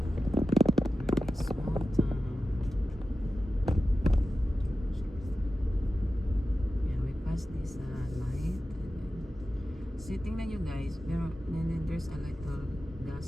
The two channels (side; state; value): both; normal; correlation 0.94